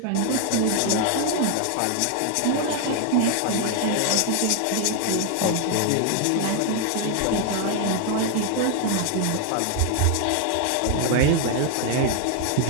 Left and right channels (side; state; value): both; different; correlation 0.00